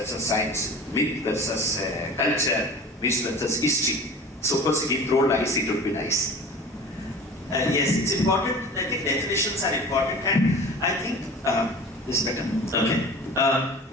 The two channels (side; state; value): both; normal; correlation 0.39